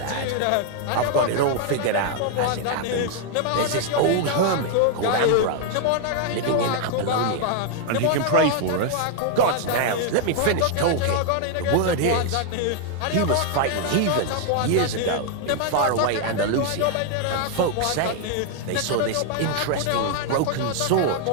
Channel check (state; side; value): different; both; correlation 0.00